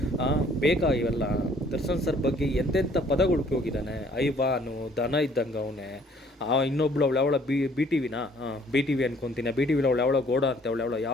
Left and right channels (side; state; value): both; normal; correlation 0.59